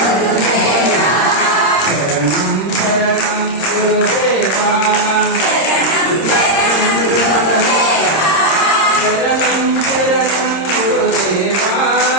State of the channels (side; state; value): right; late; 26 ms